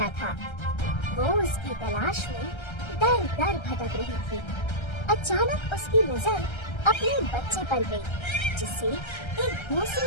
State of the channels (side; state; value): right; late; 1.3 ms